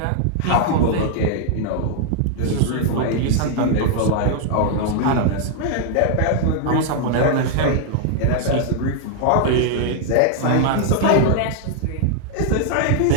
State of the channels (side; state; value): both; different; correlation -0.01